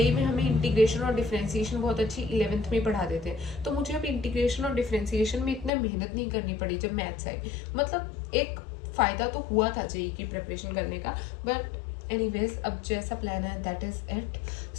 में हमें इंटीग्रेशन और डिफरेंशिएशन बहुत अच्छी 11th में पढ़ा देते हैं, तो मुझे अब इंटीग्रेशन और डिफरेंशिएशन में इतना मेहनत नहीं करनी पड़ी जब मैथ्स आई। मतलब एक फ़ायदा तो हुआ था JE की प्रिपरेशन करने का। बट एनीवेज अब जैसा प्लान है दैट इज़ इट।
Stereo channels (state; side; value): drops out; right; at 5.7 s